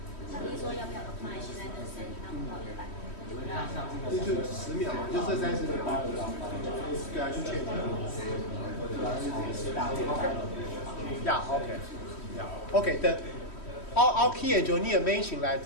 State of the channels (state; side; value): late; right; 3.1 ms